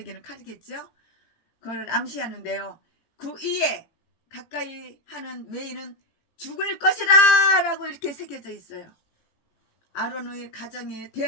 칼이겠죠. 그걸 암시하는데요. 그 위에 가까이 하는 외인은 죽을 것이라 라고 이렇게 새겨져 있어요. 아론의 가정에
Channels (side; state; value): right; late; 18 ms